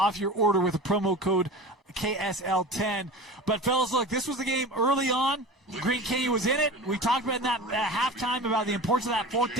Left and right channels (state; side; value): normal; both; correlation 0.34